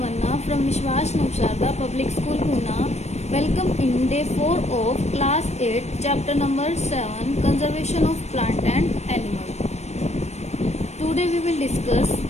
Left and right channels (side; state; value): right; late; 0.32 ms